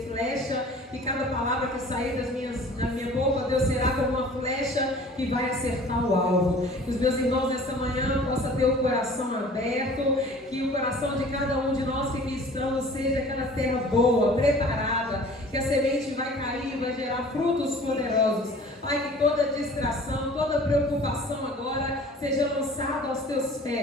flecha, e cada palavra que sair da minha boca, Deus, será como uma flecha que vai acertar o alvo. Que os meus irmãos nessa manhã possam ter o coração aberto, que o coração de cada um de nós que aqui estamos seja aquela terra boa, preparada, que a semente vai cair, vai gerar frutos poderosos. Pai, que toda distração, toda preocupação agora seja lançada aos teus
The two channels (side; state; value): both; normal; correlation 0.47